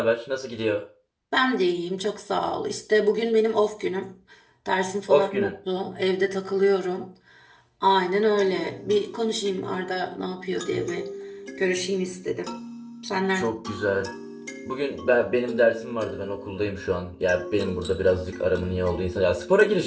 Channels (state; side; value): identical; both; correlation 1.00